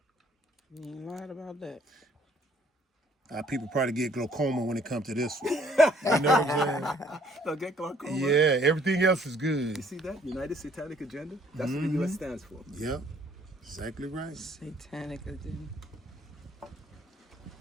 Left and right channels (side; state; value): both; normal; correlation 0.62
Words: ain't lied about that. People probably get glaucoma when it comes to this one. You know what I'm They'll get glaucoma. saying? Yeah, everything else is good. You see that? United Satanic Agenda? That's what the U.S. stands for. Yep, exactly right. Satanic agenda.